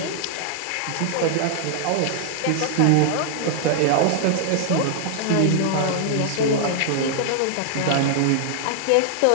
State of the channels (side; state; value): both; different; correlation -0.01